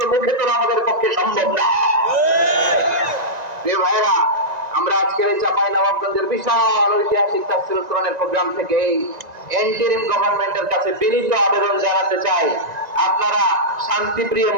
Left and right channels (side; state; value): left; late; 1.9 ms